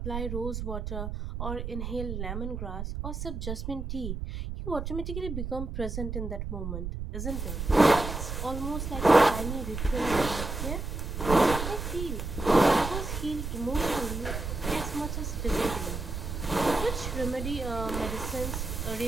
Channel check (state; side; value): noise; right; rumble, 5 dB below the sound